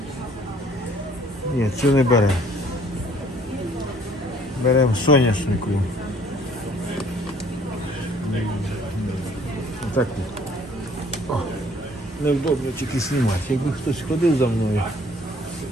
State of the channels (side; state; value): both; normal; correlation 0.58